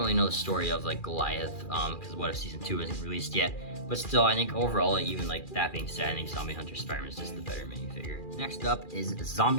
know the story of like Goliath because What If Season 2 isn't released yet. But still, I think overall, even like that being said, I think Zombie Hunter Spider-Man is just the better minifigure. Next up is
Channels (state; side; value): late; right; 2.4 ms